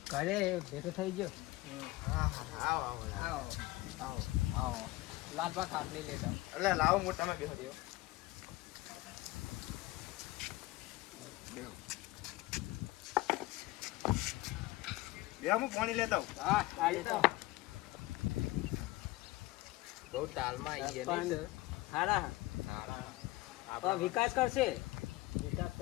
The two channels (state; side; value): quieter; right; 19.3 dB